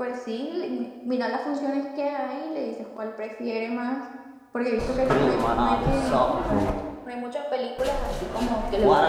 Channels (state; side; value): identical; both; correlation 1.00